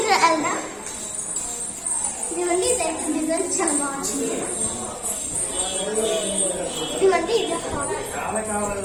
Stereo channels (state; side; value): identical; both; correlation 1.00